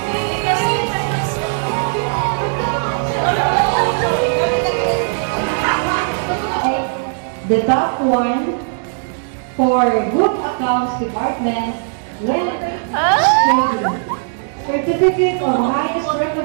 The top one for Good Accounts Department went trading. Certificate of highest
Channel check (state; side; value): silent; left; 67 dB below the other